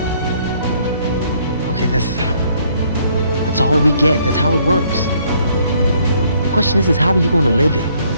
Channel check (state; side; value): inverted; both; correlation -0.66